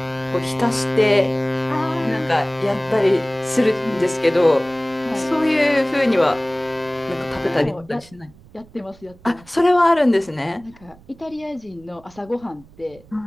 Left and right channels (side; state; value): right; noise; rumble, 25 dB below the sound